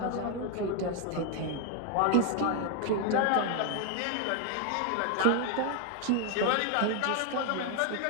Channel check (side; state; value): both; different; correlation 0.01